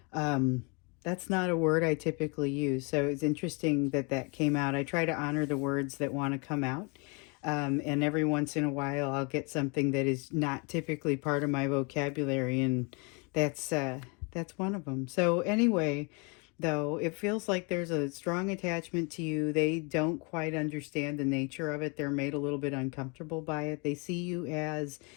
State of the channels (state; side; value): quieter; right; 32.3 dB